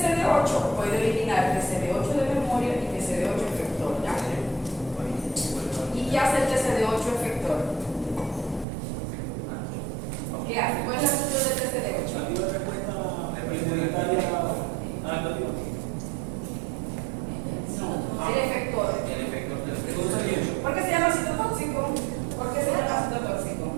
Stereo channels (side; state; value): left; drops out; at 8.7 s